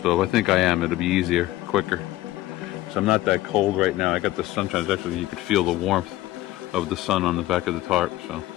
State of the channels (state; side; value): quieter; right; 16.1 dB